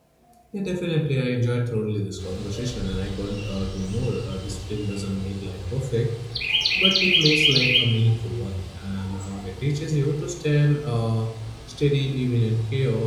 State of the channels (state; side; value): identical; both; correlation 1.00